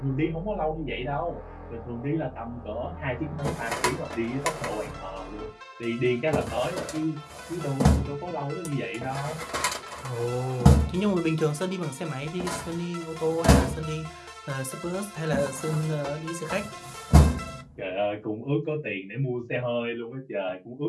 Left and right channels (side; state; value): both; identical; correlation 1.00